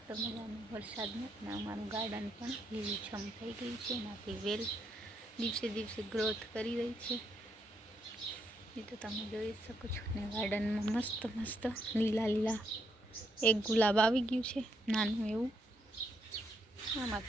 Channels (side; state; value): both; normal; correlation 0.77